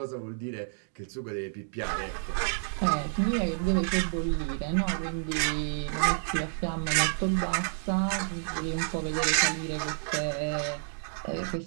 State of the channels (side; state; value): left; silent; digital silence